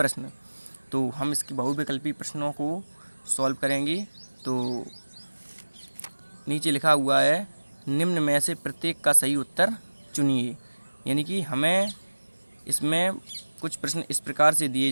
तो हम इसके बहुविकल्पी प्रश्नों को सॉल्व करेंगे। तो नीचे लिखा हुआ है निम्न में से प्रत्येक का सही उत्तर चुनिए। यानी कि हमें इसमें कुछ प्रश्न इस प्रकार से दिए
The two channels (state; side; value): inverted; both; correlation -1.00